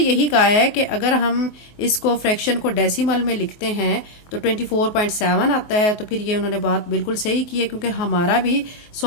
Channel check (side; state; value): right; late; 23 ms